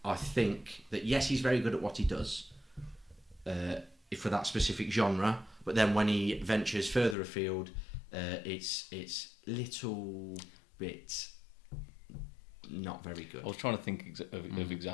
I think that yes, he's very good at what he does for that specific genre. But then when he ventures further afield, it's little bit not very good. I was trying to think of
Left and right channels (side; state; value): right; drops out; at 7.2 s